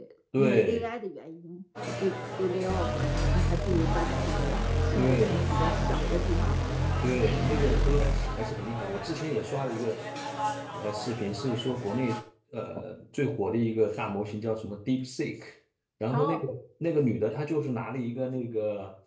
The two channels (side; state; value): both; identical; correlation 1.00